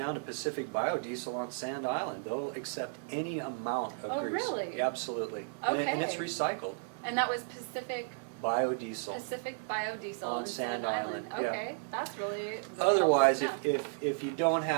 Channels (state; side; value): silent; left; 55 dB below the other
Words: to Pacific Biodiesel on Sand Island. They'll accept any amount of Oh, grease. really? Absolutely. Okay. And it's recycled. And that was Pacific Biodiesel. Biodiesel On in Sand Island, yeah. Okay, that's really Otherwise, helpful to know. if you don't